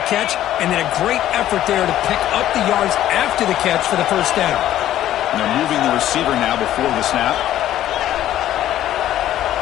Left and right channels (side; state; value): right; quieter; 12.7 dB